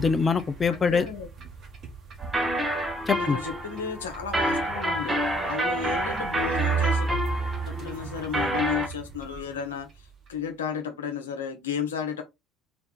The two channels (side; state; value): both; normal; correlation 0.60